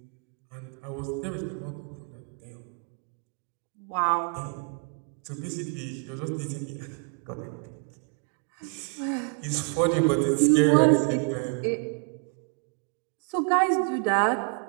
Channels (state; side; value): quieter; left; 37.6 dB